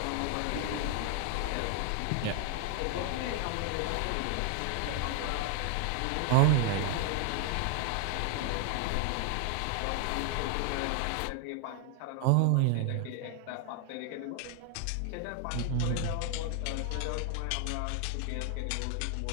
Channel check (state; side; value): different; both; correlation 0.00